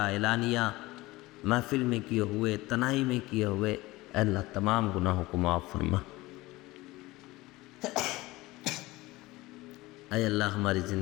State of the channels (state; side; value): quieter; right; 19.9 dB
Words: محفل میں کیے ہوئے، تنہائی میں کیے ہوئے، اے اللہ تمام گناہوں کو معاف فرما۔ اے اللہ ہماری